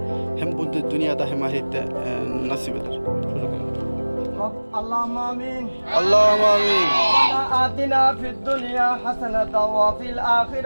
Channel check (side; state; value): both; inverted; correlation -1.00